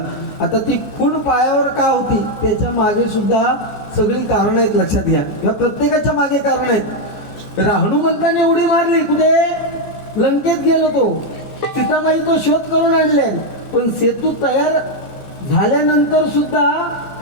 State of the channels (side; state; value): right; late; 15 ms